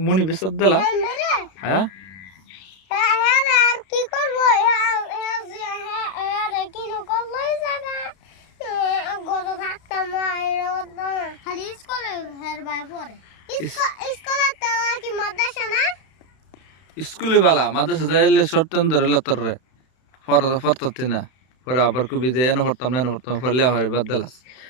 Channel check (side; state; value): right; late; 32 ms